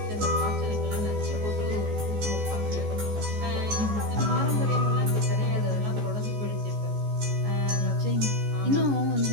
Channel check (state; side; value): late; left; 14 ms